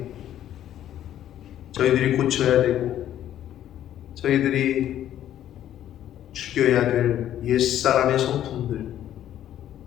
저희들이 고쳐야 되고 저희들이 죽여야 될 옛사람의 성품들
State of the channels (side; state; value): right; quieter; 11.5 dB